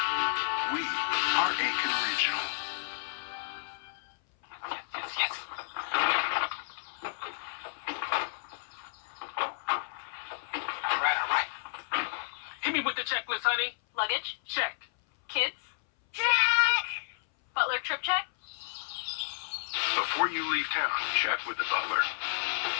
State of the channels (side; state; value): right; silent; 57 dB below the other